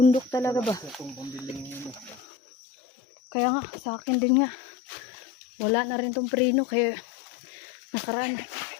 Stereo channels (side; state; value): right; drops out; at 2.2 s